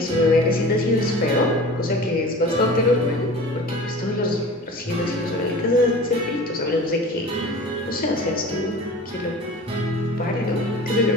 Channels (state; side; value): normal; both; correlation 0.39